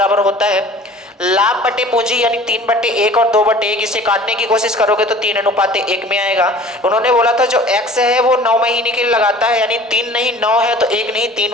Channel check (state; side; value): normal; both; correlation 0.46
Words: होता है लाभ बटे पूंजी, यानी 3/1 और 2/1, इसे काटने की कोशिश करोगे तो 3:1 में आएगा। उन्होंने बोला था जो x है वो 9 महीने के लिए लगाता है, यानी 3 नहीं 9 है तो 1 नहीं 3